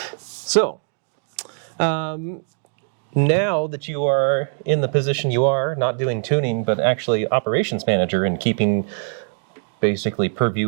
So, now that you are in the position you are, not doing tuning, but actually operations manager and keeping basically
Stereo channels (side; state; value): left; silent; digital silence